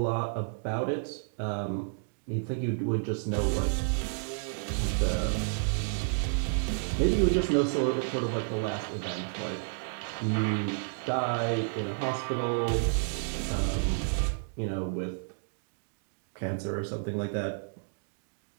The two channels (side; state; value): left; silent; digital silence